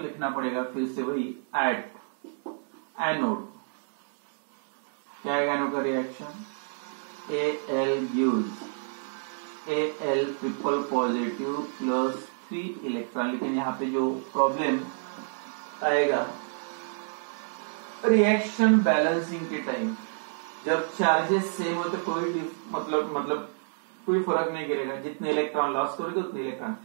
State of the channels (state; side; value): silent; left; digital silence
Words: लिखना पड़ेगा। फिर से वही एट एनोड, क्या है एनोड का reaction Al gives Al triple positive plus 3 electron. लेकिन यहाँ पे जो प्रॉब्लम आएगा रिएक्शन बैलेंसिंग के टाइम, जब चार्जेस सेम हो तो कोई मतलब कोई फर्क नहीं गिरेगा, जितने इलेक्ट्रॉन लॉस करोगे उतने इलेक्ट्रॉन।